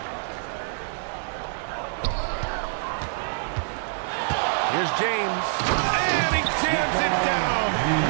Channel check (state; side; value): silent; left; digital silence